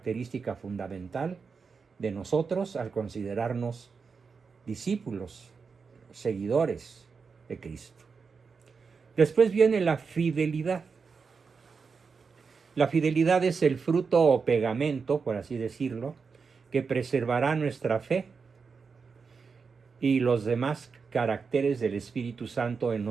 fundamental de nosotros al considerarnos discípulos, seguidores de Cristo. Después viene la fidelidad. La fidelidad es el fruto o pegamento, por así decirlo, que preservará nuestra fe y los demás caracteres del Espíritu Santo en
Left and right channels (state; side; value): quieter; left; 5.3 dB